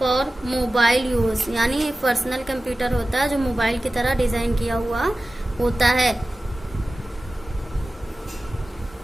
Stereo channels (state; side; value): normal; both; correlation 0.95